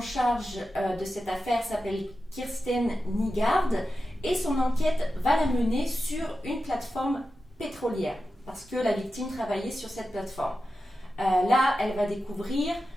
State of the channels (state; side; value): normal; both; correlation 0.91